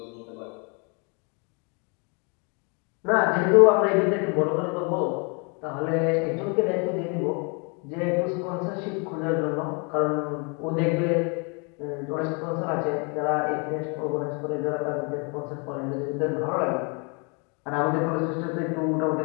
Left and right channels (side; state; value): right; quieter; 34.0 dB